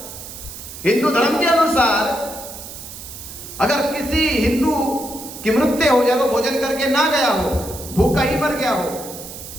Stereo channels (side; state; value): right; noise; hiss, 12 dB below the sound